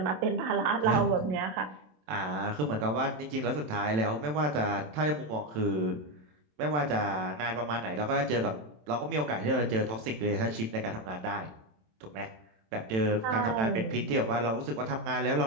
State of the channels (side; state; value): left; late; 27 ms